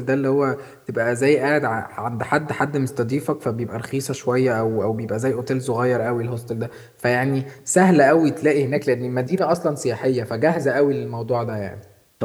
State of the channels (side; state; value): both; identical; correlation 1.00